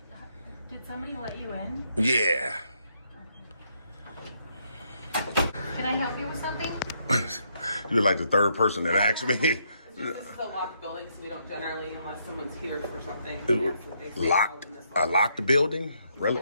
Did somebody let you in? Yeah. Can I help you with something? You're like the third person that asked me. This is a locked building, so we don't generally, unless someone's here for something. That's what they say Locked? in this A locked building? Really?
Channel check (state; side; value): inverted; both; correlation -0.74